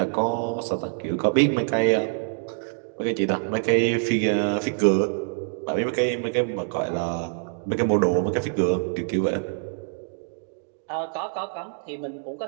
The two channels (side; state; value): left; silent; digital silence